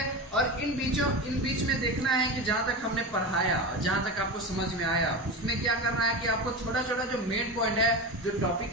और इन बीच में देखना है कि जहां तक हमने पढ़ाया, जहां तक आपको समझ में आया, उसमें क्या करना है कि आपको छोटा छोटा जो मेन पॉइंट है, जो टॉपिक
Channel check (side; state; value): both; normal; correlation 0.24